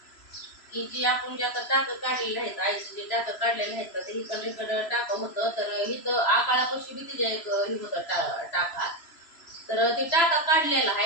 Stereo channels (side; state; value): right; late; 3.0 ms